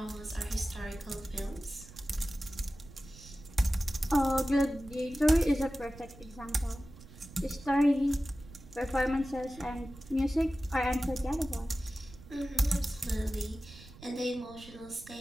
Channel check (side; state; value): right; noise; rumble, 18 dB below the sound